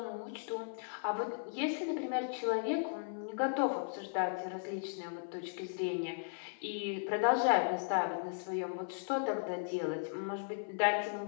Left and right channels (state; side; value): silent; right; 53 dB below the other